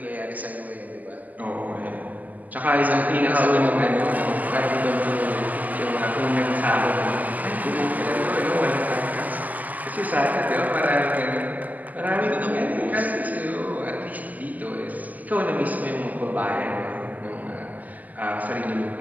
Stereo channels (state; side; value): late; left; 0.080 ms